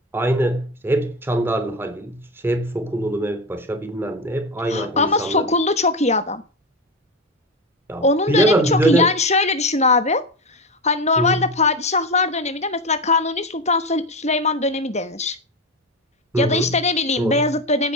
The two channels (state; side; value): normal; both; correlation 0.18